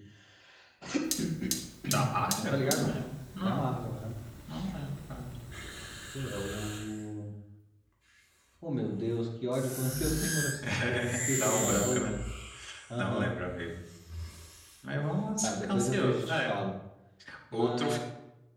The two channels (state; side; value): identical; both; correlation 1.00